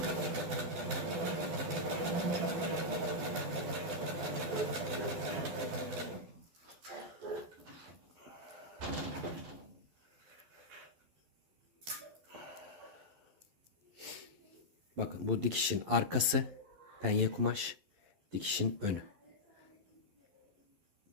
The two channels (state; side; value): late; left; 11 ms